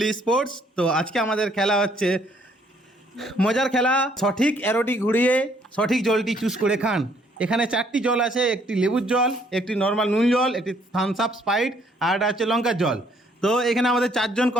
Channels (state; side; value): normal; both; correlation 0.65